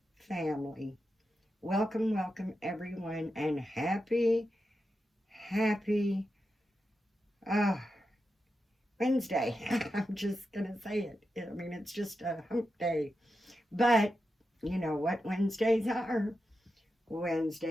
family. Welcome, welcome everyone, and happy uh, Wednesday. I'm just going to say it. I mean, it's just a hump day. But you know what Wednesdays are?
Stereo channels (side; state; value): both; normal; correlation 0.89